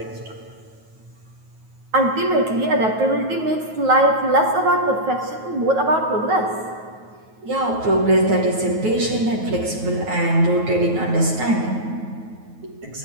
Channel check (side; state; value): left; late; 9.3 ms